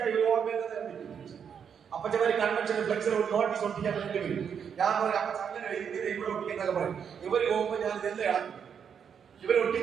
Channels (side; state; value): left; quieter; 7.4 dB